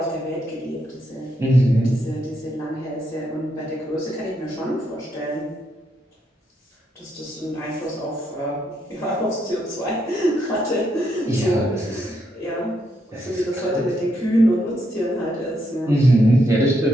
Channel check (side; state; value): both; normal; correlation 0.78